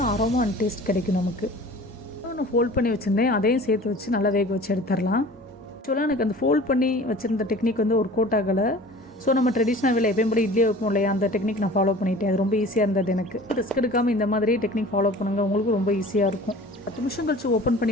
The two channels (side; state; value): both; normal; correlation 0.43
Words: அரோமா அண்ட் டேஸ்ட் கிடைக்கும் நமக்கு. நான் ஃபோல்ட் பண்ணி வச்சுருந்தேன், அதையும் சேர்த்து வச்சு நல்லா வேக வச்சு எடுத்துடலாம். ஆக்சுவலாக எனக்கு அந்த ஃபோல்ட் பண்ணி வச்சுருந்த டெக்னிக் ஒர்க் அவுட் ஆகலை. ஸோ நம்ம ட்ரெடிஷ்னல் வேலை எப்பயும் போல இட்லியை வைப்போம் இல்லையா, அந்த டெக்னிக் நான் ஃபாலோ பண்ணிட்டேன். அது ரொம்ப ஈஸியாக இருந்தது எனக்கு. ரிஸ்க் எடுக்காமல் இந்த மாதிரி டெக்னிக் ஃபாலோ பண்ணுங்கள், உங்களுக்கு ரொம்ப ஈஸியாக இருக்கும். 10 நிமிஷம் கழிச்சு ஓப்பன்